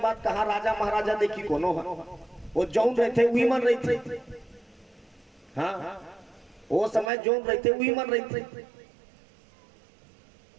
बात कहा, राजा महाराजा देखी कोनो है, वो जौन रहते वही मन रही थे। हाँ, वो समय जौन रहते वही मन रही थे।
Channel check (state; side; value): drops out; left; at 7.1 s